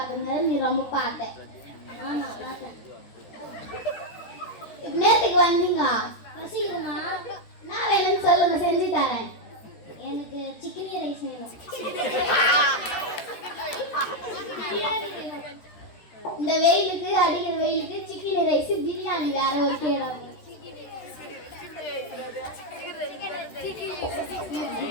நீ ரொம்ப பார்த்த. ஆமா பார்த்தேன். நேற்றுக்கு வந்தீங்க. பசிக்குதுமா. நான் வேணும்னு சொல்லுங்க, செஞ்சு தரேன். எனக்கு சிக்கன் ரைஸ் வேணும். இந்த வெயிலுக்கு, அடிக்கிற வெயிலுக்கு சிக்கன் ரைஸ் பிரியாணி வேற ஒரு கேடாது.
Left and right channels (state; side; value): late; right; 13 ms